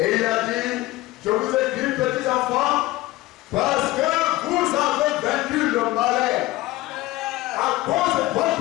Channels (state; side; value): quieter; right; 18.4 dB